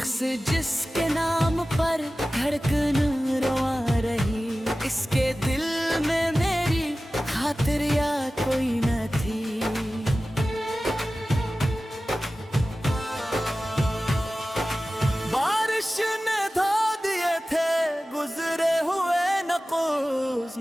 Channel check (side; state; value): both; normal; correlation 0.96